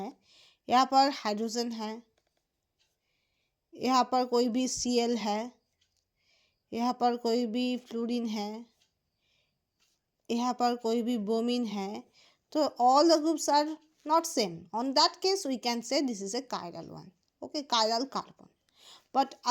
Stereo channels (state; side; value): identical; both; correlation 1.00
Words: यहाँ पर हाइड्रोजन है, यहाँ पर कोई भी Cl है, यहाँ पर कोई भी फ्लोरीन है, यहाँ पर कोई भी ब्रोमीन है, तो all the groups are not same. On that case we can say this is a chiral one, okay, chiral carbon. But